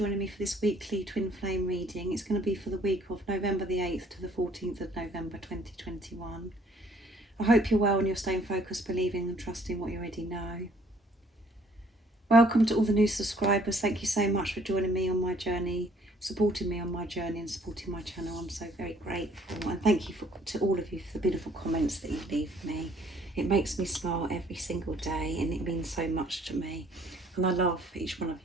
me for this weekly twin flame reading. It's going to be for the week of November the 8th to the 14th of November 2021. I hope you're well and you're staying focused, believing and trusting what you already know. Welcome to all the new subscribers. Thank you so much for joining me on my journey, supporting me on my journey and supporting my channel. I'm so very grateful, and thank you to all of you for the beautiful comments that you leave me. It makes me smile every single day and it means so much to me, and I love each one of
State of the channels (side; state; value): both; normal; correlation 0.61